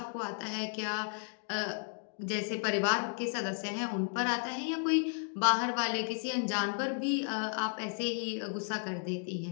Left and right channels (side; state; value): right; silent; 55 dB below the other